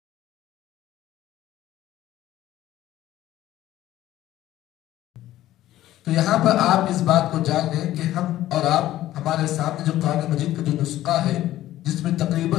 تو یہاں پر آپ اس بات کو جان لیں کہ ہم اور آپ ہمارے سامنے جو قرآن مجید کا جو نسخہ ہے جس میں تقریباً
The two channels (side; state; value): right; quieter; 14.2 dB